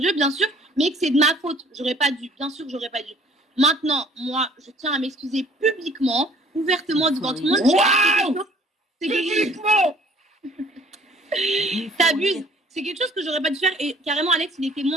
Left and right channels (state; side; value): normal; both; correlation 0.55